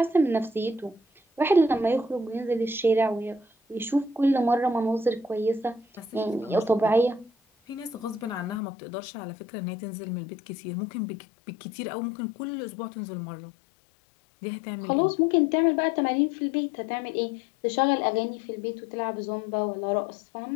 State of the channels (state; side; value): drops out; right; at 8.6 s